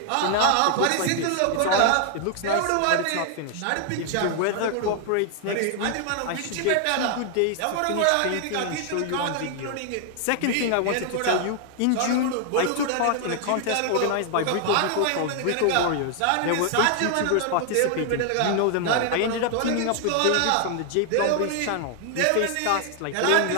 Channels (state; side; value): different; both; correlation 0.00